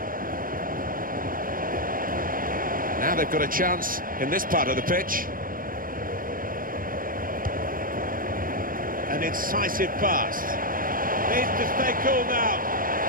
Now they've got a chance in this part of the pitch. An incisive pass. Needs to stay cool now.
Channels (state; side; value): late; left; 0.41 ms